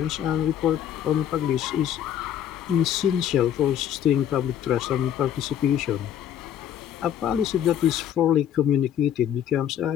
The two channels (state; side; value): quieter; right; 9.9 dB